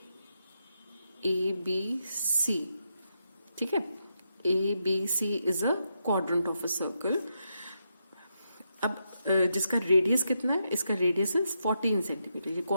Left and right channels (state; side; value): inverted; both; correlation -0.83